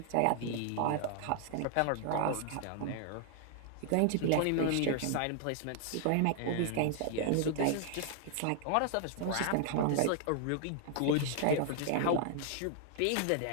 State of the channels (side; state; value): both; different; correlation 0.00